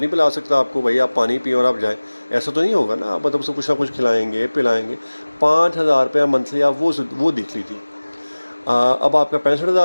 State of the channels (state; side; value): inverted; both; correlation -1.00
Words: نہیں پلا سکتا آپ کو، بھائی آپ پانی پئیں اور آپ جائیں، ایسا تو نہیں ہوگا نا۔ آپ مطلب اس کو کچھ نہ کچھ کھلائیں گے، پلائیں گے۔ 5,000 روپیہ منتھلی آپ وہ دیکھ لیجیے۔ اب آپ کا